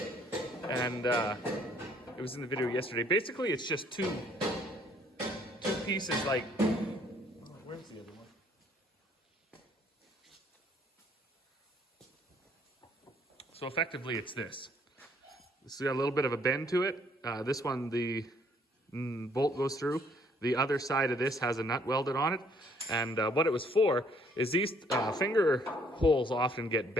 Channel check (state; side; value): normal; both; correlation 0.63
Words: and it was in the video yesterday. Basically, it's just two pieces like. Oh, where's the other one? So effectively, it's this. This has got a little bit of a bend to it. This one, the bolt goes through. The other side of this has a nut welded on it. And what it was for is these finger holes often get